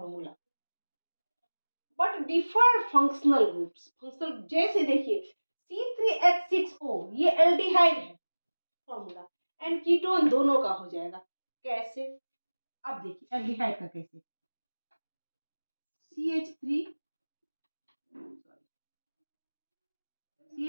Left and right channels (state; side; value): inverted; both; correlation -1.00